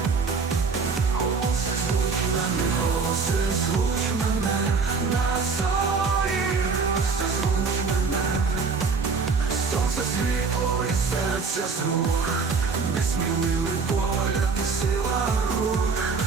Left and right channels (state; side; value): quieter; left; 4.8 dB